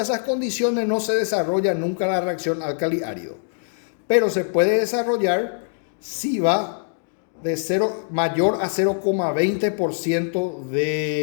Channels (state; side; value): silent; right; digital silence